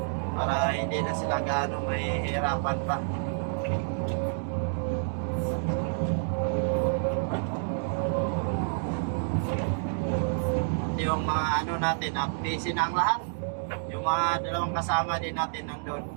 Para hindi na sila gaano mahihirapan pa. Yung mga ano natin, busy na ang lahat. Yung mga dalawang kasama din natin nandun.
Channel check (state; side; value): silent; left; digital silence